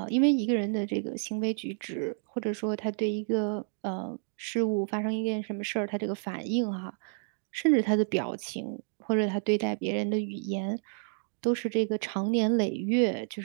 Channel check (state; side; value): silent; left; 58 dB below the other